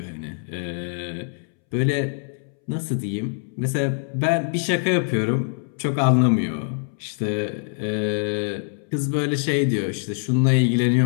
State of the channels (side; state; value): right; silent; 63 dB below the other